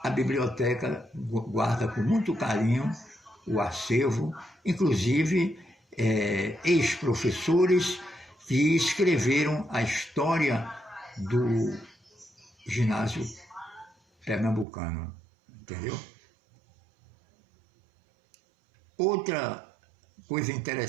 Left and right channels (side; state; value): left; drops out; at 14.7 s